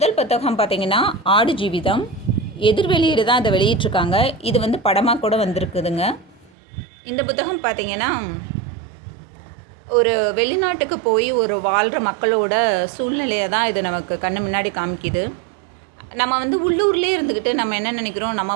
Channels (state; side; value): drops out; left; at 6.5 s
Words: புத்தகம் பார்த்திங்கன்னா ஆடு ஜீவிதம். எதிர்வெளியீடு தான் இதை வெளியிட்ருக்காங்க. இது வந்து படமாக கூட வந்திருக்குதுங்க. இந்த புத்தகம் பார்த்திங்கன்னா ஒரு வெளிநாட்டுக்கு போய் ஒரு வாழ்கிற மக்களோட சூழ்நிலையை தான் இது நமக்கு கண்ணு முன்னாடி காமிக்குது. நம்ம வந்து உள்ளூர்லேயே இருந்துக்கிட்டு நம்ம என்ன நினைக்கிறோம், நம்ம